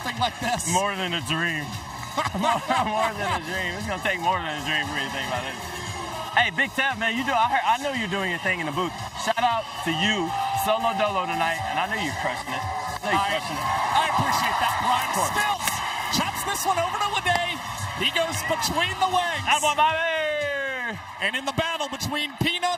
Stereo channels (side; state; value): both; identical; correlation 1.00